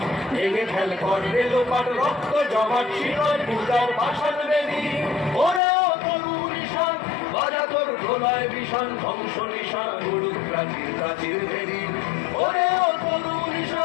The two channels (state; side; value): drops out; right; at 5.6 s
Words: ভেঙে ফেল কর রেলোপাট, রক্ত জমাট শিকল পূজার পাষাণ বেদী। ওরে ও তরু নিশান বাজা তোর প্রলয় বিষাণ, ধ্বংস নিশান উড়ুক প্রাচীর প্রাচীর ভেদী। ওরে ও তরু